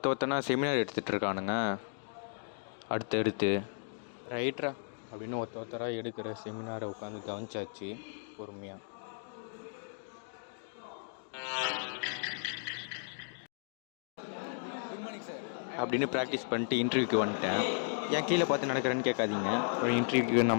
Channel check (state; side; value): silent; right; digital silence